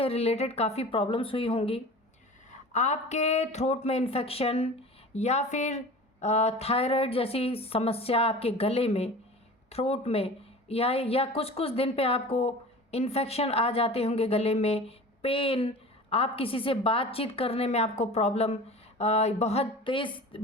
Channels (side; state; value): both; normal; correlation 0.38